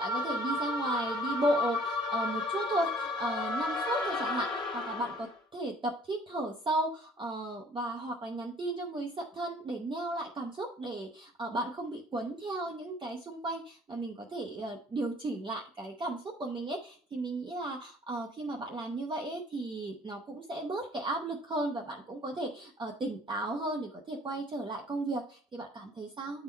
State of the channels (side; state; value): both; normal; correlation 0.55